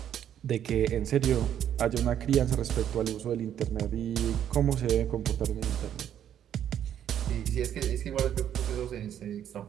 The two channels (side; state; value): left; quieter; 10.0 dB